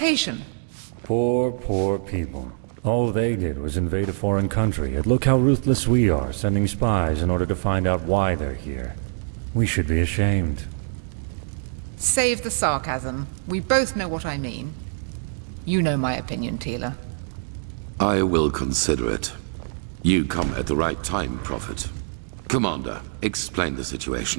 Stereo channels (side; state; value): left; silent; digital silence